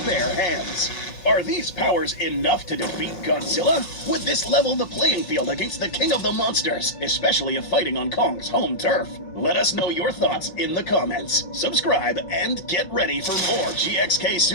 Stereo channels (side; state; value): right; late; 5.6 ms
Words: hands. Are these powers enough to defeat Godzilla? Would this level the playing field against the king of the monsters, especially if fighting on Kong's home turf? Let us know your thoughts in the comments. Subscribe and get ready for more GXK